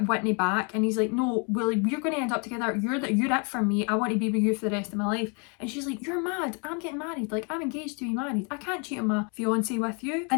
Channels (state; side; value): quieter; right; 36.2 dB